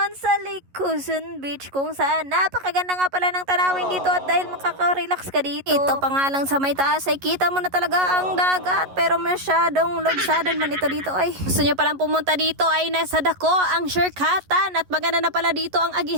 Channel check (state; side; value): late; left; 11 ms